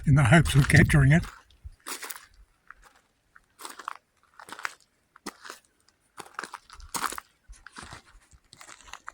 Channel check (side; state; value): both; identical; correlation 1.00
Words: in the hopes of capturing it.